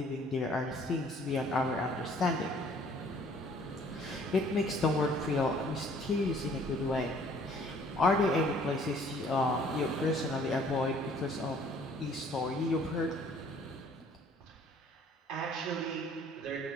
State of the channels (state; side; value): normal; both; correlation 0.57